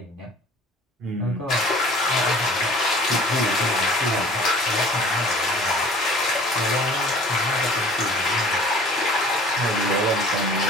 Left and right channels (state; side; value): normal; both; correlation 0.48